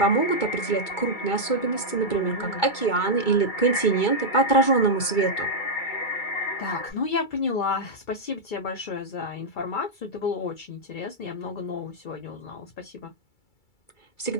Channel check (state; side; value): late; right; 2.3 ms